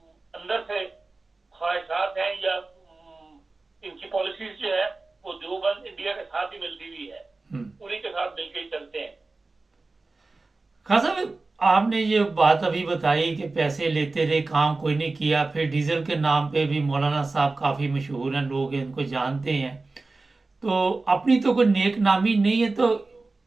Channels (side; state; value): left; quieter; 3.5 dB